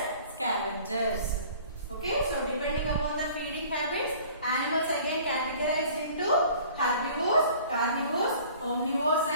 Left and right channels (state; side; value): inverted; both; correlation -0.49